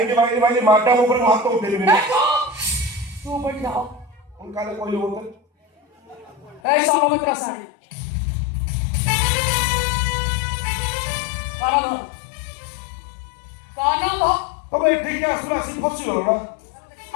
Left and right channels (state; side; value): drops out; right; at 6.6 s